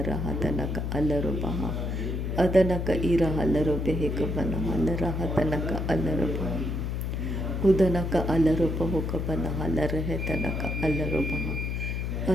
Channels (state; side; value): noise; left; hum, 2 dB below the sound